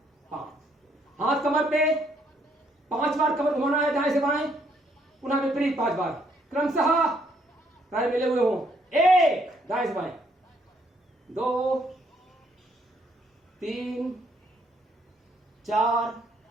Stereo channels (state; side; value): normal; both; correlation 0.69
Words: 5। हाथ कमर पे 5 बार कमर घुमाना है दाएं से बाएं, पुनः विपरीत 5 बार। क्रमशः पैर मिले हुए हों। 1 दाएं से बाएं, 2 3 4